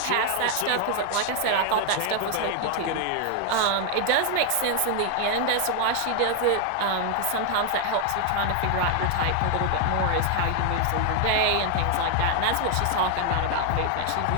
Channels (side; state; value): both; different; correlation 0.00